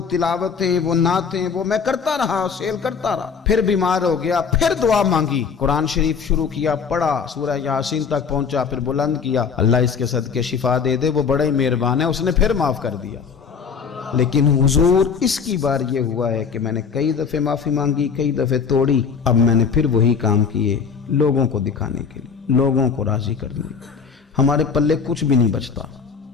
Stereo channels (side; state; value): right; quieter; 6.0 dB